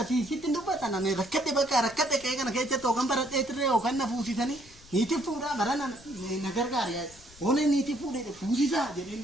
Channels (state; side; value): noise; left; rumble, 23 dB below the sound